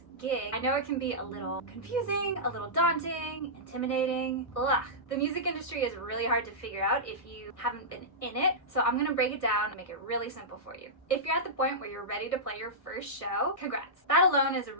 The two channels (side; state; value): right; late; 1.6 ms